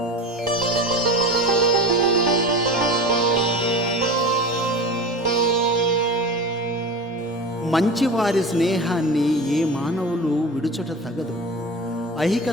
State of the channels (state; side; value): normal; both; correlation 0.32